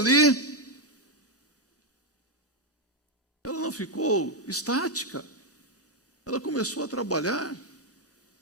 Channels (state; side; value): normal; both; correlation 0.03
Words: Ela não ficou estática, ela começou a trabalhar.